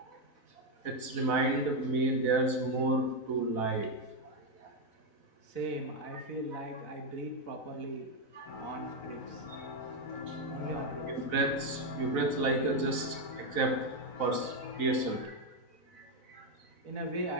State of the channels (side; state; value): right; late; 4.0 ms